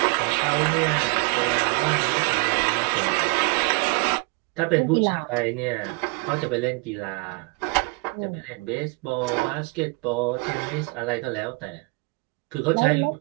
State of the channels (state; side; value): quieter; left; 31.1 dB